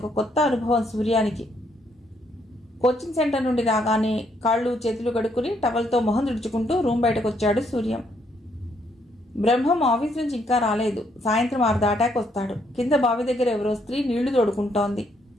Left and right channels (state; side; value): normal; both; correlation 0.72